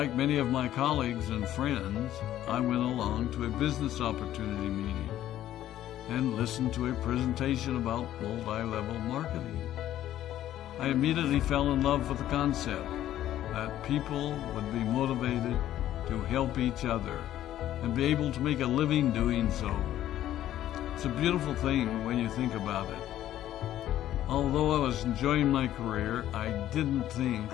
many of my colleagues and friends, I went along to a business opportunity meeting and listened to a presentation about multi-level marketing. I immediately fell in love with the concept that people would be motivated to help each other and be able to make a living doing so. It's a beautiful thing when you think about it. Although I was enjoying my career, I didn't think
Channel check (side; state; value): right; quieter; 12.6 dB